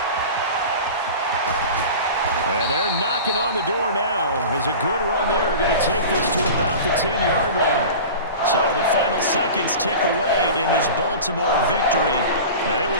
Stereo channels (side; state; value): both; inverted; correlation -0.35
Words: And they're knocking on the door now as a good run there. Going to take this to about the 10-yard line. So the final seconds tick away in this Baltimore victory. And it